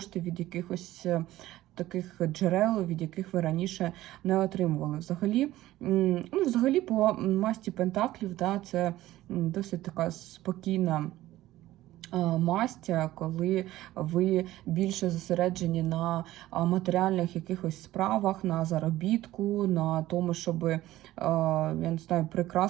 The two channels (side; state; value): left; quieter; 15.6 dB